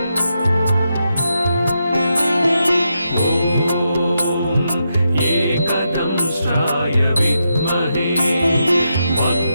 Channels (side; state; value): both; inverted; correlation -0.84